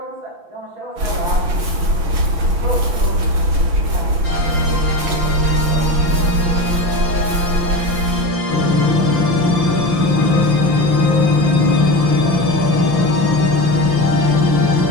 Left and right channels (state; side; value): late; left; 5.9 ms